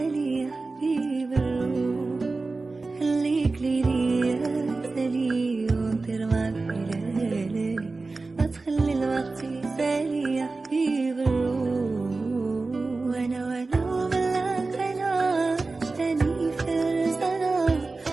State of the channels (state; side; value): quieter; left; 3.6 dB